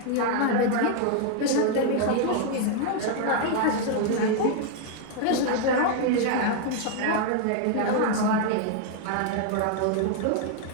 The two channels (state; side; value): different; both; correlation 0.00